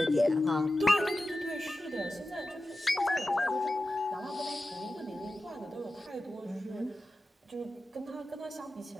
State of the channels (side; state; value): both; normal; correlation 0.93